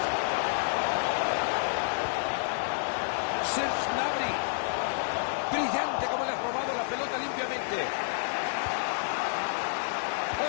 Serge Gnabry. Brillante como le has robado la pelota limpiamente.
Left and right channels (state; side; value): silent; right; digital silence